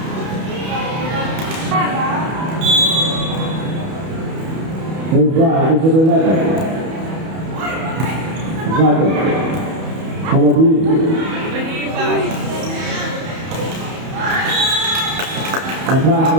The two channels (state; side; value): late; left; 31 ms